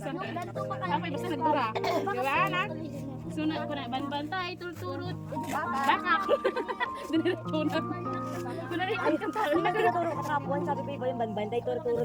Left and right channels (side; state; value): both; identical; correlation 1.00